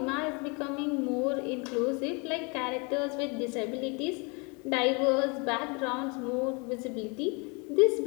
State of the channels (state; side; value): quieter; right; 31.3 dB